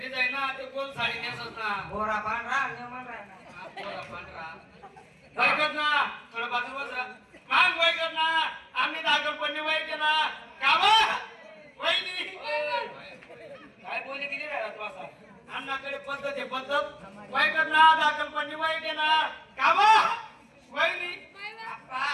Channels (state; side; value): identical; both; correlation 1.00